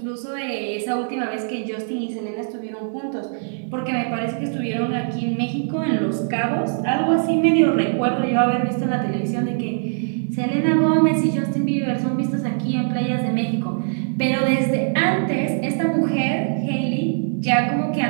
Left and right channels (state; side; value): silent; left; digital silence